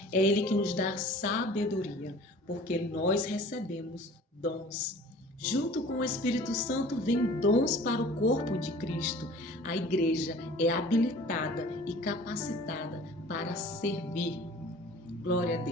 é Ele que nos dá sabedoria. porque nós recebemos dons. Junto com o Espírito Santo vem dons para o corpo de Cristo. A igreja é habilitada e capacitada para servir. Glória a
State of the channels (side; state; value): both; normal; correlation 0.46